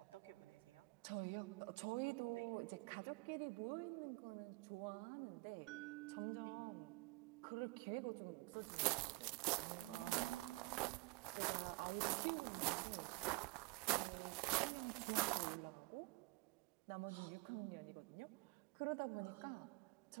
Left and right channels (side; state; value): left; quieter; 25.9 dB